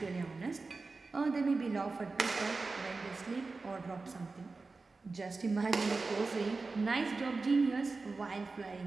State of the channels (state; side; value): quieter; left; 3.9 dB